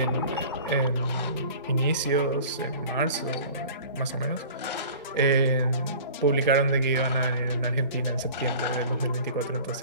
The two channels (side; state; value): both; inverted; correlation -0.43